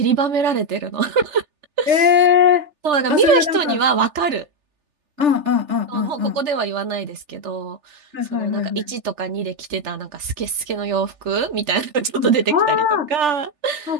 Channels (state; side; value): late; left; 3.4 ms